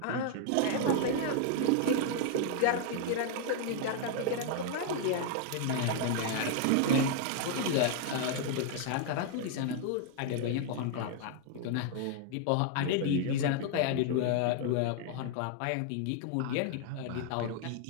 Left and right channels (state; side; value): different; both; correlation 0.00